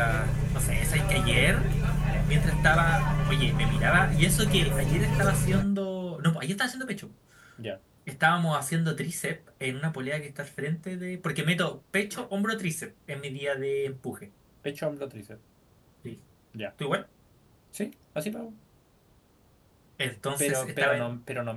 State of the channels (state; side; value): identical; both; correlation 1.00